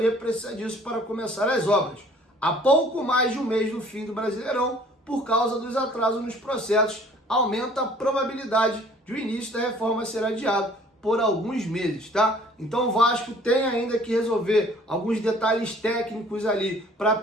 precisa disso para começar as obras. Há pouco mais de um mês do fim do Brasileirão, por causa dos atrasos nos processos, aumenta a probabilidade de o início da reforma ser adiado por alguns meses, tá? Então o Vasco tem ainda que resolver alguns detalhes técnicos ali para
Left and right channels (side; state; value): both; normal; correlation 0.54